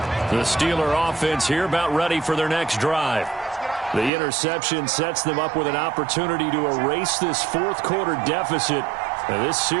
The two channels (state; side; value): drops out; left; at 4.1 s